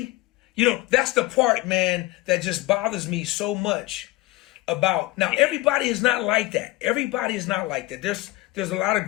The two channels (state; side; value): quieter; right; 18.7 dB